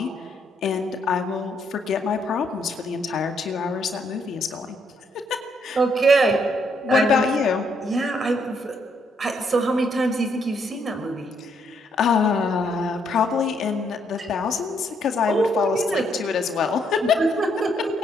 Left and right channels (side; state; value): both; normal; correlation 0.73